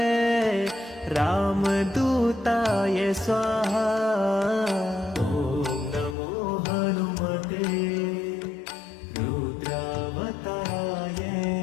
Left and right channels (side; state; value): right; drops out; at 6.2 s